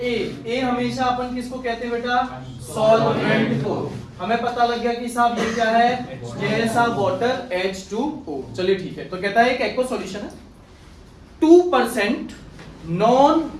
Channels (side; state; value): both; identical; correlation 1.00